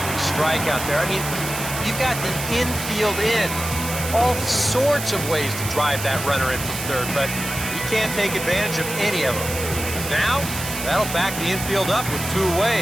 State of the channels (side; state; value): right; noise; hiss, 7 dB below the sound